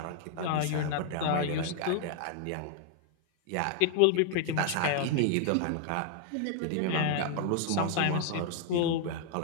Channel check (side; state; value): both; different; correlation 0.00